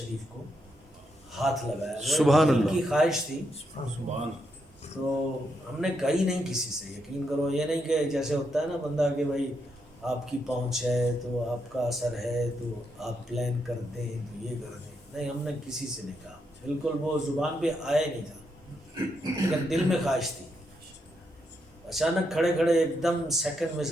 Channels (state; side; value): normal; both; correlation 0.80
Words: کو ہاتھ لگایا، وہ سبحان دل اللہ، کی خواہش تھی، تو ہم نے کہی نہیں کسی سے، یقین کرو، یہ نہیں کہ جیسے ہوتا ہے نا بندہ کہ بھائی آپ کی پہنچ ہے تو آپ کا اثر ہے تو آپ پلان کر دیں تو یہ کر دیں، نہیں، ہم نے کسی سے نہیں کہا، بالکل وہ زبان پہ آیا نہیں تھا، لیکن دل میں خواہش تھی، اچانک کھڑے کھڑے ایک دم سیکنڈ میں